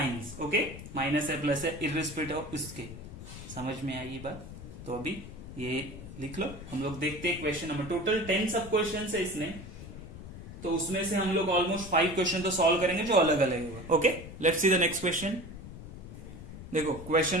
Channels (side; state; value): left; noise; rumble, 12 dB below the sound